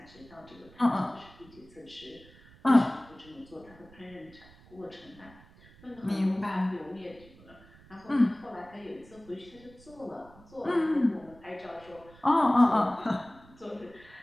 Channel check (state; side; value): noise; right; rumble, 24 dB below the sound